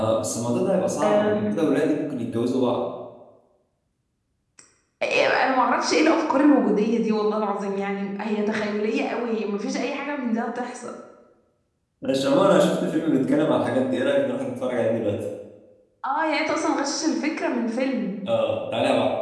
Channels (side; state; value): both; identical; correlation 1.00